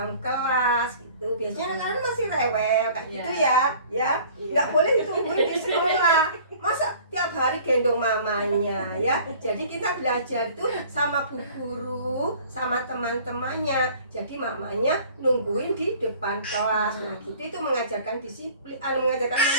kelas gitu. Biasanya anak-anak masih rewel kayak gitu ya. Nggak boleh ditungguin di sekolah. Masa tiap hari gendong mamanya ya. Jadi kita belajar tuh sama bu guru, sama teman-temannya. Jadi mamanya nungguin di depan kelas. Nah gitu itu mengajarkan disiplin, mengajarkan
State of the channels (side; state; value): both; inverted; correlation -0.49